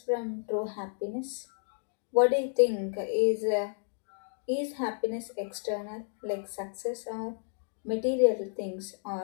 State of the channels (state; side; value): silent; right; digital silence